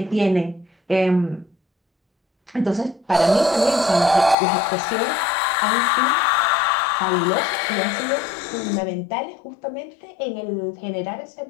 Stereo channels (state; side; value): drops out; right; at 4.4 s